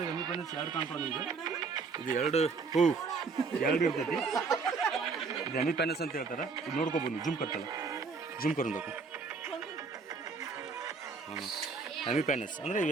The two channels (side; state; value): left; quieter; 4.7 dB